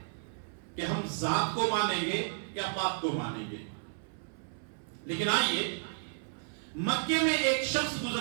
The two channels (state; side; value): silent; left; 56 dB below the other